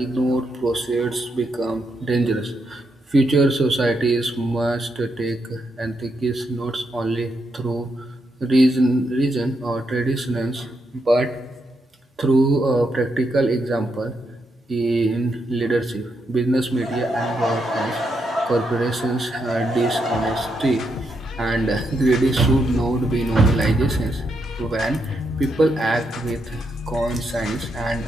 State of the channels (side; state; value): both; normal; correlation 0.80